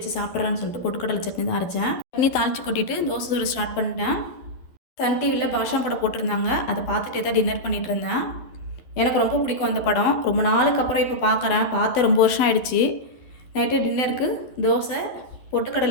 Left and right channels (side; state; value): right; late; 11 ms